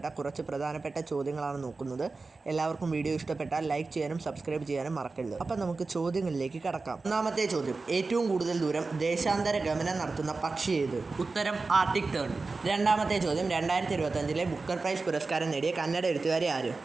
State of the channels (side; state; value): left; quieter; 3.9 dB